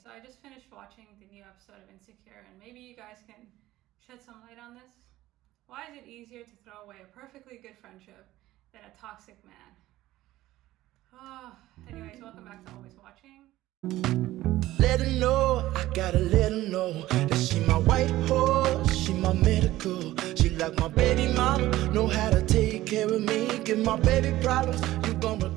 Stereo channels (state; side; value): quieter; left; 15.9 dB